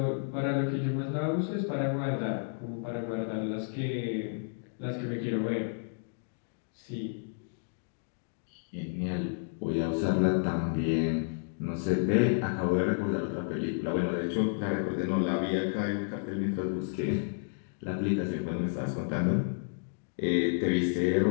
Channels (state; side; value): silent; right; digital silence